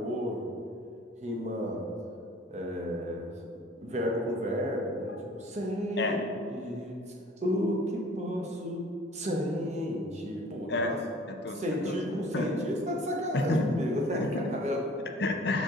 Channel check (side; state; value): both; normal; correlation 0.50